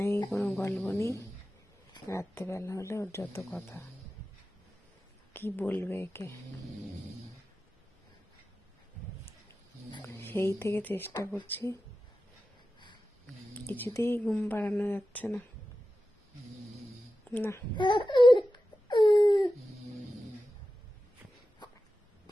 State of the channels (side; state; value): both; normal; correlation 0.93